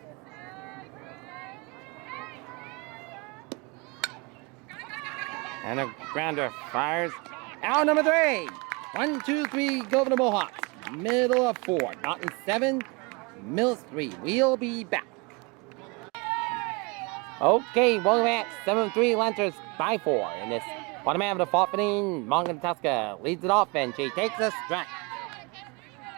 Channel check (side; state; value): left; quieter; 28.1 dB